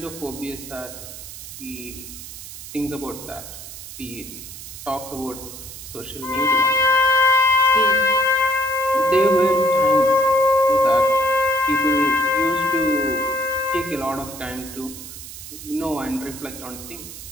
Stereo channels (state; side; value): noise; right; hiss, 12 dB below the sound